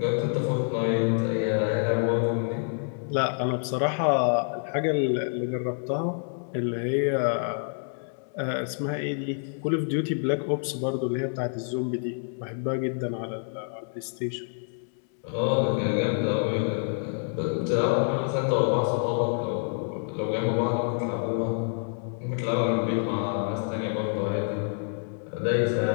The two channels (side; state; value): right; silent; digital silence